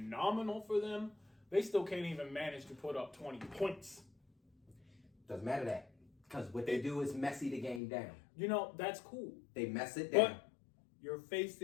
for them, they still can't even manage to put up 20 points. Doesn't matter that. Because what they do is messy the game down. You know, that's cool. They mess it down. But you're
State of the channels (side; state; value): right; drops out; at 7.8 s